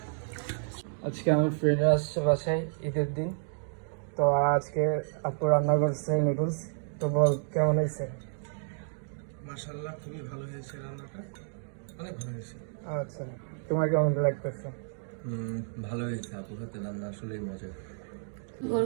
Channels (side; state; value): left; silent; digital silence